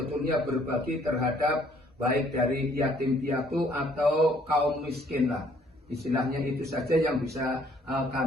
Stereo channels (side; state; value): both; normal; correlation 0.63